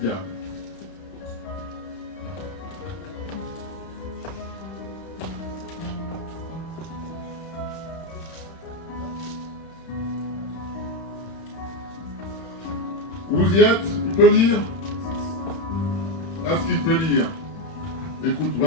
Vous y êtes? Il peut lire? Est-ce qu'il peut lire? Écoute,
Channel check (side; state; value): right; late; 31 ms